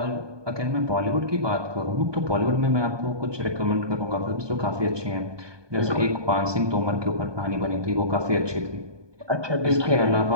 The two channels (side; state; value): left; late; 1.2 ms